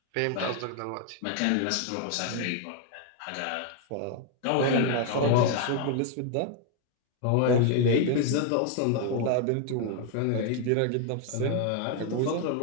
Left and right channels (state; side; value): different; both; correlation 0.01